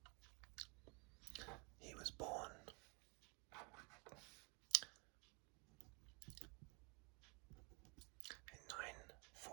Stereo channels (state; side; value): quieter; left; 31.3 dB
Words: He was born in